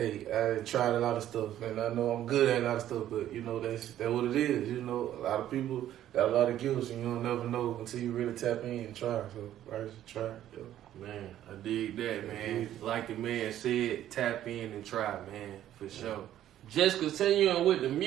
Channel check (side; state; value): left; quieter; 12.1 dB